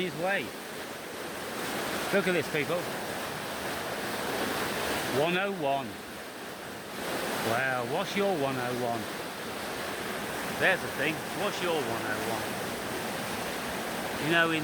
way. Look at this, people. 101. Wow, what's your 101? There's the thing, what's your 101? You know,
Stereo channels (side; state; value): both; identical; correlation 1.00